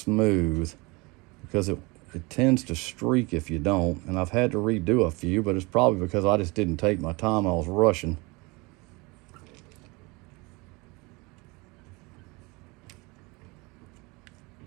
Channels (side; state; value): left; quieter; 25.8 dB